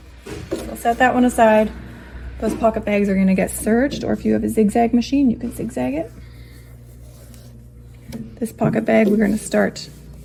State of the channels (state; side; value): identical; both; correlation 1.00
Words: set that one aside. Those pocket bags are going to get serged, or if you have a zigzag machine, you can zigzag it. This pocket bag, we're going to start